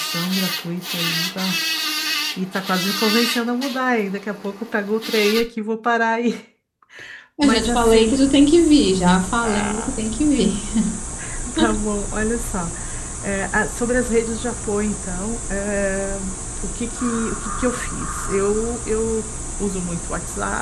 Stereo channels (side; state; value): both; identical; correlation 1.00